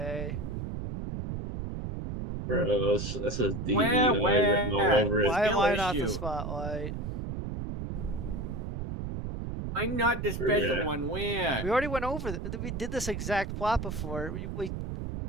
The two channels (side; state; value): right; noise; rumble, 5 dB below the sound